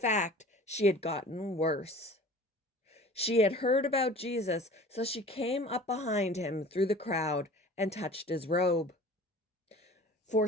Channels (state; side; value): normal; both; correlation 0.43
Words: she had gotten worse. She had heard about Jesus, so she came up behind him through the crowd and touched his robe. For